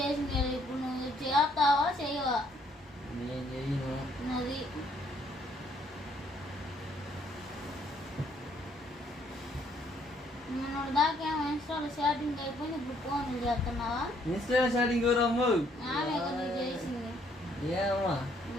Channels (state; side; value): normal; both; correlation 0.67